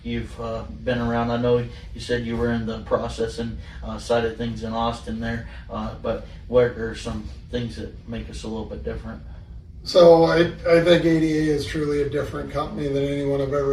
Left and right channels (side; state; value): both; identical; correlation 1.00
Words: you've been around? I know you said you were in the processing side of things in Austin there, but what are some things that make us a little bit different? So I think ADA is truly a different company than anyone I've